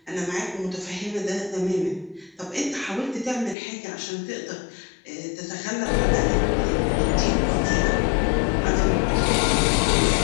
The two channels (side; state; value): right; drops out; at 3.6 s